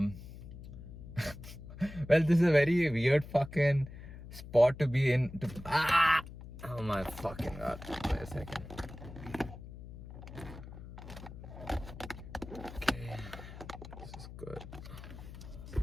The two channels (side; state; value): left; noise; hum, 13 dB below the sound